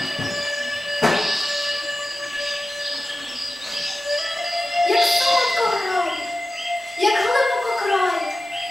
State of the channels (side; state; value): both; normal; correlation 0.95